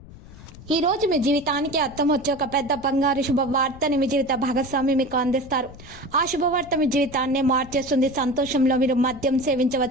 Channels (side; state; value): left; noise; rumble, 18 dB below the sound